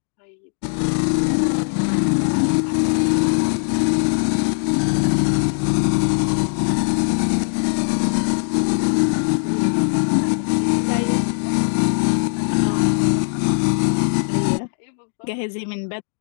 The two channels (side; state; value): right; silent; 66 dB below the other